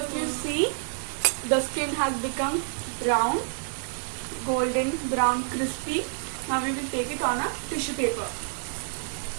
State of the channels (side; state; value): left; silent; digital silence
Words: you see, the skin has become brown, golden brown, crispy. Now we will take it on a tissue paper.